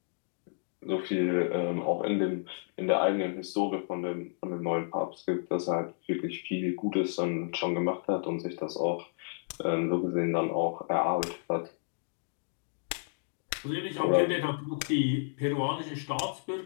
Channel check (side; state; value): right; silent; digital silence